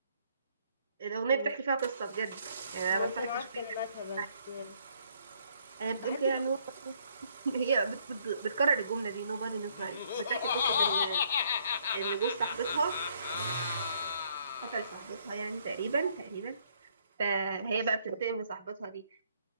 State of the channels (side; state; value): both; inverted; correlation -0.67